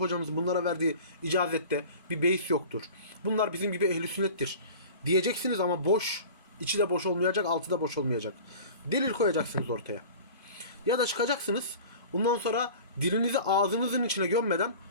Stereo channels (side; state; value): both; inverted; correlation -0.39